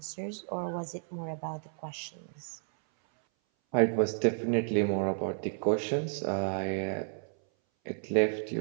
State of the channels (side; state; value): left; silent; 57 dB below the other